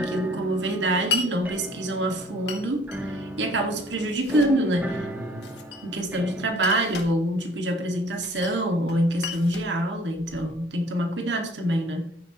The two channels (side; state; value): both; normal; correlation 0.54